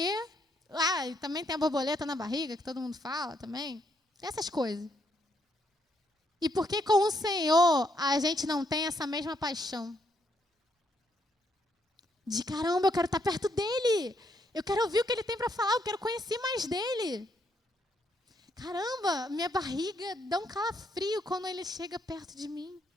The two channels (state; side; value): normal; both; correlation 0.74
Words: E também tem a borboleta na barriga, que todo mundo fala também. Essas coisas. E por que com o Senhor a gente não tem essa mesma paixão? De caramba, eu quero estar perto dele. Eu quero ouvir o que ele tem para falar, eu quero conhecer mais dele. Caramba, minha barriga dá um calafrio quando ele chega perto de mim.